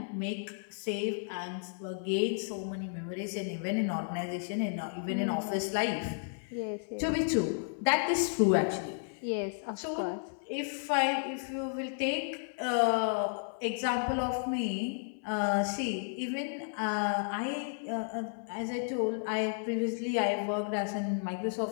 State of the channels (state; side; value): silent; right; 56 dB below the other